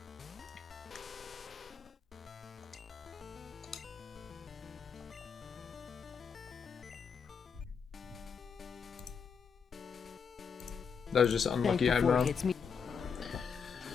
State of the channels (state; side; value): quieter; right; 6.2 dB